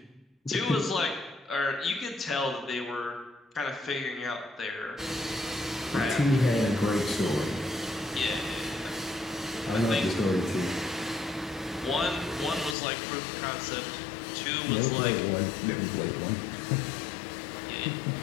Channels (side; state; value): right; drops out; at 12.8 s